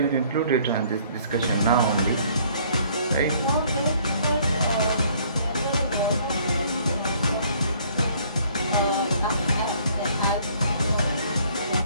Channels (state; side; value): inverted; both; correlation -0.60